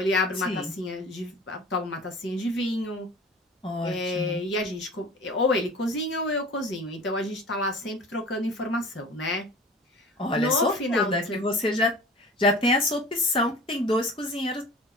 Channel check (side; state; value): both; normal; correlation 0.40